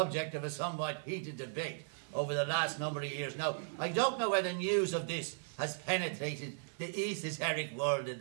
of a somewhat heated debate over the last number of years. Now, I don't know whether news of this has penetrated the esoteric world of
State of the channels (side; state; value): left; silent; 53 dB below the other